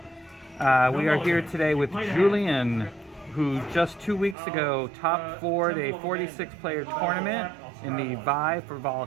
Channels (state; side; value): drops out; left; at 4.4 s